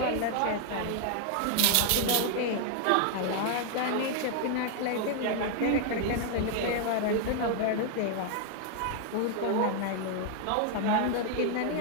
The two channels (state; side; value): different; both; correlation 0.00